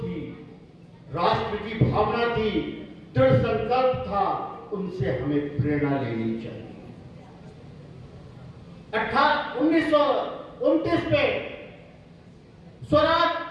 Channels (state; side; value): identical; both; correlation 1.00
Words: राष्ट्र की भावना थी, दृढ़ संकल्प था, उनसे हमें प्रेरणा लेनी चाहिए। 1929 में स्वराज